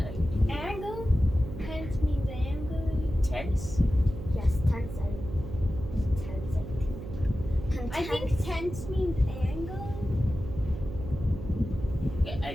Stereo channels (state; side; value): noise; right; hum, 9 dB below the sound